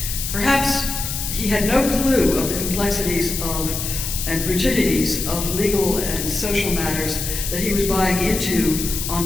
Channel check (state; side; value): noise; left; hiss, 4 dB below the sound